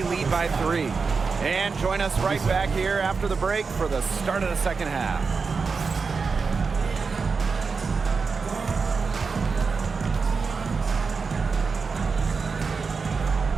lead by 3. And join us right back here after the break for the start of the second half.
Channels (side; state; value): left; quieter; 4.9 dB